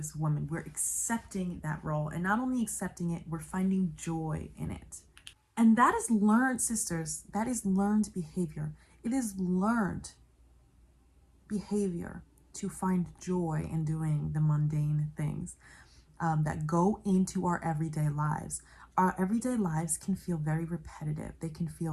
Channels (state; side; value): identical; both; correlation 1.00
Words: women. We're accepting that role, and not only accepting it, we're finding joy in it. And that is learned, sisters, that is learned behavior. It is learned behavior to find joy in doing the mundane things that go into our everyday lives. Our everyday lives can feel very repetitive. They can